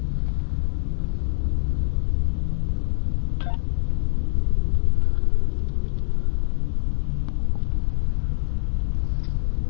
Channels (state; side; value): silent; right; 63 dB below the other